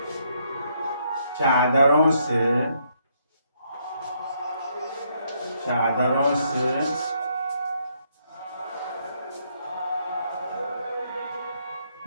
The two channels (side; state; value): both; inverted; correlation -0.73